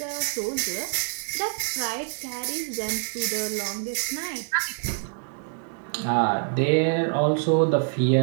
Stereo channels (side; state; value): left; silent; 57 dB below the other